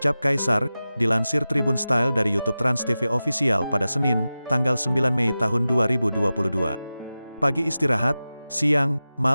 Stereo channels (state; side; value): inverted; both; correlation -0.95